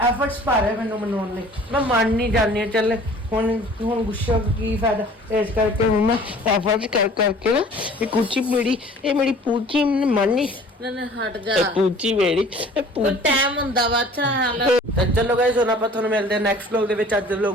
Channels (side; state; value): both; normal; correlation 0.49